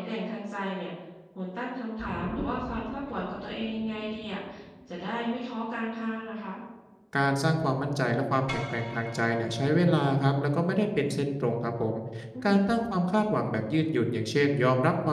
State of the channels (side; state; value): both; identical; correlation 1.00